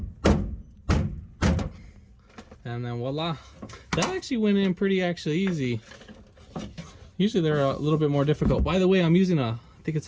And then voila. That actually went in pretty easy. Usually they're a little bit more difficult. By the way, I'm using I think it's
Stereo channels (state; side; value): identical; both; correlation 1.00